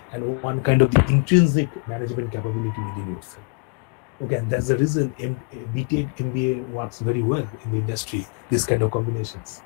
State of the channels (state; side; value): quieter; right; 34.8 dB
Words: and one kind of the intrinsic management capability within yourself. Okay, and that's the reason BTEC MBA works very well in the industry, this kind of combinations.